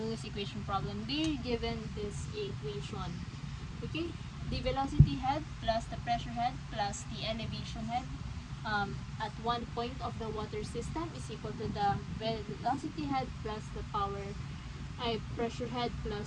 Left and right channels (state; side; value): identical; both; correlation 1.00